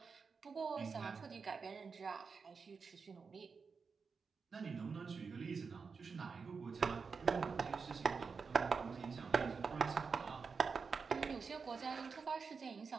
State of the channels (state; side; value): quieter; left; 5.2 dB